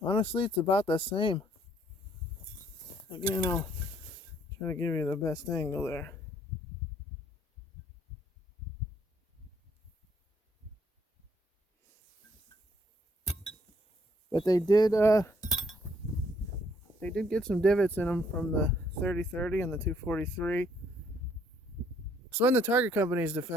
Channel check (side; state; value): both; normal; correlation 0.66